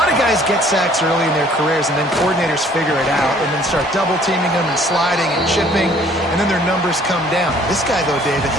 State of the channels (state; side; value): normal; both; correlation 0.58